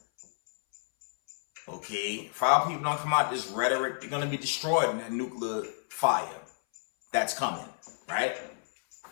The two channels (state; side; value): silent; right; 58 dB below the other